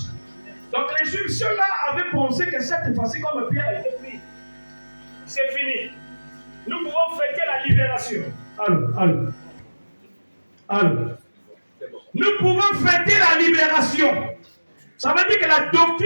Donc les Juifs, ceux-là, avaient pensé que cette fois-ci, comme Pierre a été pris, c'est fini. Nous pouvons fêter la libération. Allô. Nous pouvons fêter la libération. Ça veut dire que la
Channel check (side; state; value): both; inverted; correlation -1.00